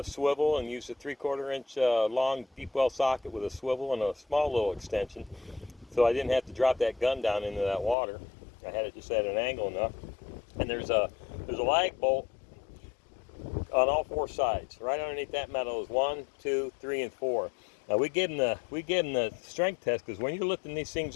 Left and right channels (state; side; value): drops out; right; at 8.0 s